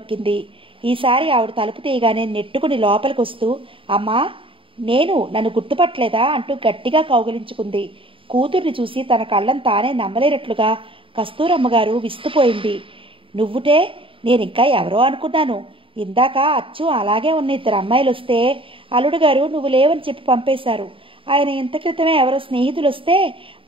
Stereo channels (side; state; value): left; late; 0.25 ms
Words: ఈసారి ఆవిడ తలుపు తీయగానే నెట్టుకుని లోపలికి వస్తూ, అమ్మా నన్ను గుర్తుపట్టలేదా అంటూ గట్టిగా కౌగిలించుకుంది. కూతుర్ని చూసి తన కళ్ళను తానే నమ్మలేనట్లుగా కస్తూరమ్మగారు విస్తుపోయింది. నువ్వుటే? నేనింకా ఎవరో అనుకున్నాను. ఇందాక అచ్చు అలాగే ఉన్న ఇద్దరు అమ్మాయిలు వస్తే అల్లుడు గారు నువ్వు లేవని చెప్పి పంపేశారు. ఆయన ఇంత క్రితమే ఎవరో స్నేహితులు వస్తే